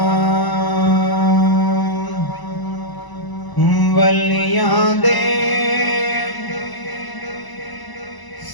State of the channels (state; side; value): late; right; 1.0 ms